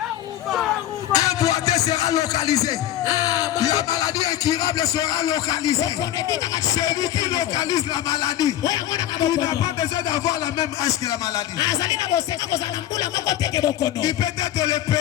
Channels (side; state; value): right; quieter; 12.6 dB